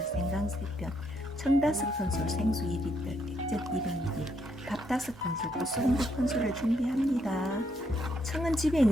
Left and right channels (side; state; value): both; normal; correlation 0.75